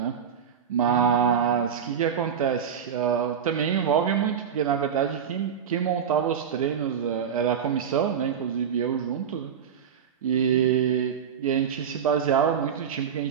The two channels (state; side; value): quieter; left; 7.8 dB